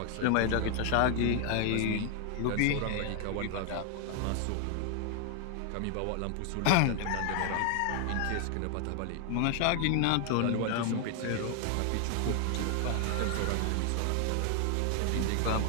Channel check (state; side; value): different; both; correlation 0.00